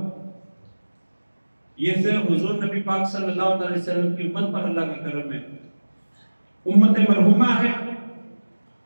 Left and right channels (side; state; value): both; inverted; correlation -1.00